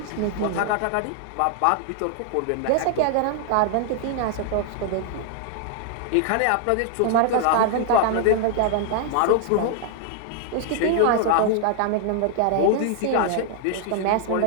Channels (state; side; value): different; both; correlation 0.00